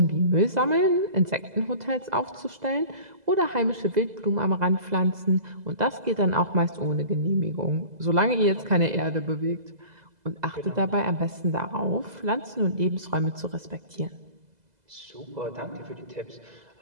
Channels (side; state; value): left; late; 2.0 ms